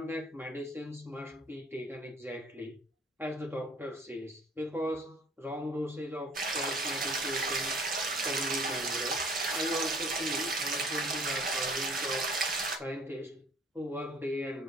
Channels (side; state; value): both; normal; correlation 0.53